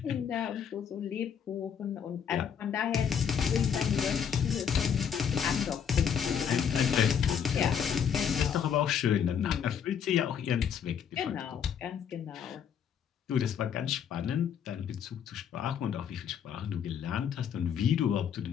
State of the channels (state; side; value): quieter; right; 7.9 dB